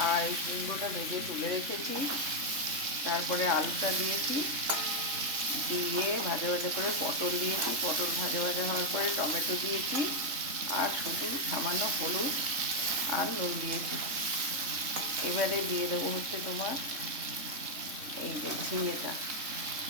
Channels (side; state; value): left; late; 3.6 ms